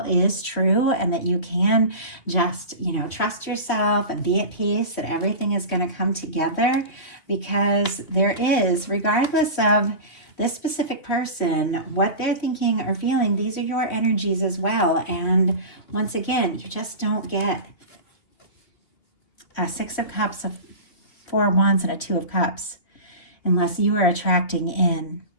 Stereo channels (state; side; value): late; right; 2.8 ms